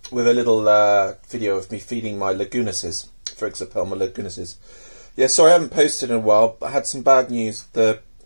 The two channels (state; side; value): inverted; both; correlation -1.00